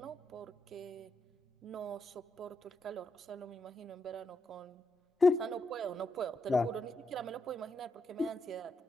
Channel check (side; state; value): both; normal; correlation 0.82